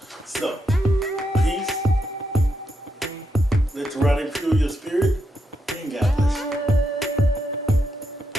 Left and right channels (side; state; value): both; normal; correlation 0.82